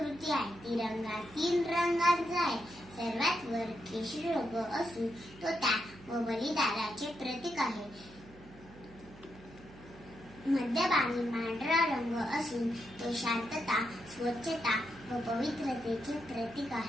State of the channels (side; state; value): right; noise; hum, 20 dB below the sound